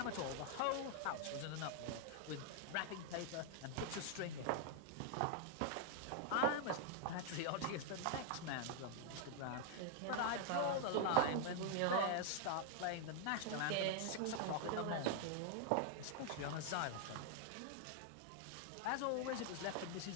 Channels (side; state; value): both; different; correlation 0.00